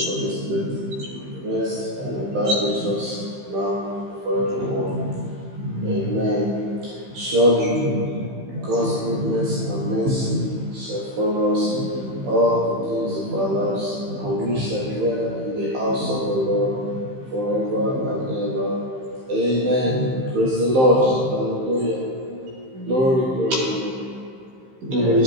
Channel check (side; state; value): left; late; 15 ms